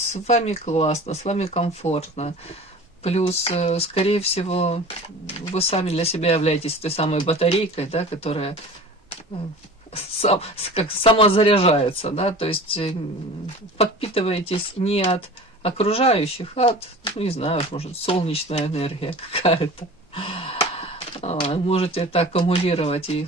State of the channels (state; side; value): normal; both; correlation 0.39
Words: вами классно, с вами комфортно. Плюс, скорее всего, вы сами для себя являетесь той самой батарейкой, да, которая как самозаряжается, да, то есть подпитываетесь не от окружающих, а от, не знаю, может, солнечная энергия какая-то. Можете это аккумулировать и